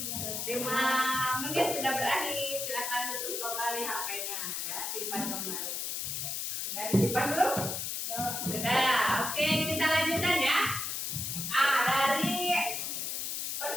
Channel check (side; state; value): left; noise; hiss, 2 dB below the sound